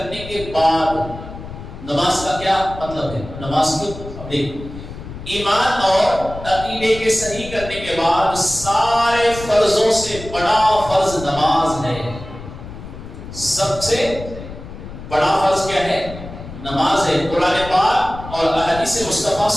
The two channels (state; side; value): noise; left; rumble, 12 dB below the sound